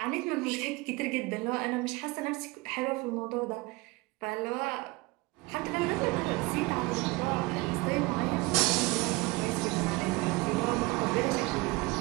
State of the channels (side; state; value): left; quieter; 23.7 dB